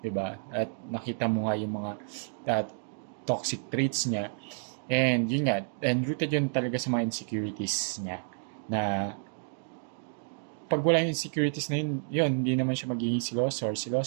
ba? At nakita mo nga yung mga toxic traits niya. And yun nga, and rooted yun talaga sa mga insecurities niya. Na pag wala yung insecurities na yun, hindi naman siya magiging siloso or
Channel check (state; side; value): silent; left; digital silence